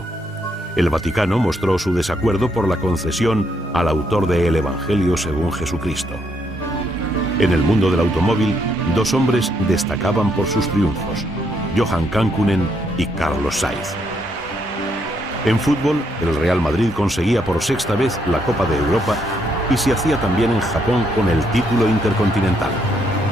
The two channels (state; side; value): normal; both; correlation 0.74